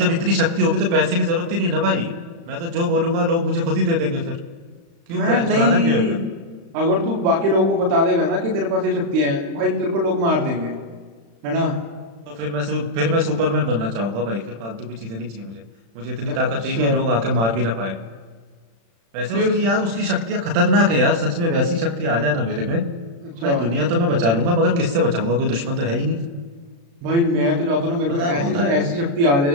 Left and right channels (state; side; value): late; left; 35 ms